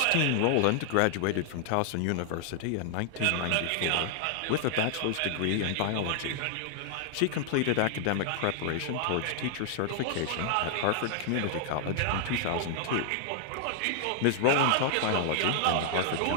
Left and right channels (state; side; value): different; both; correlation 0.00